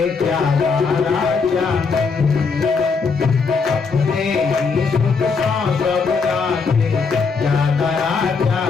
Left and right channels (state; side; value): quieter; right; 5.0 dB